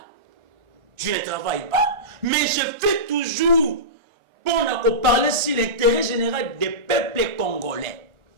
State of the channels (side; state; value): left; late; 1.3 ms